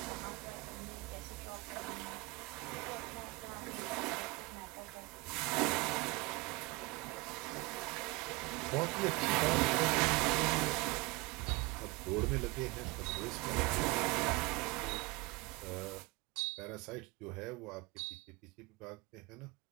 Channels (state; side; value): quieter; left; 24.2 dB